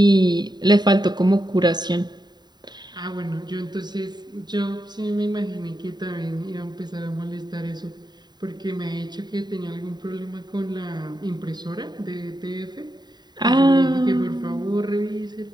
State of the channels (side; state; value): left; late; 0.21 ms